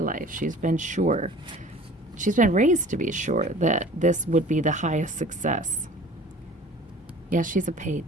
she's been sure. She's been raised to be sure that this would be the highest success. Yeah, she's a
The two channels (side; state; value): both; normal; correlation 0.45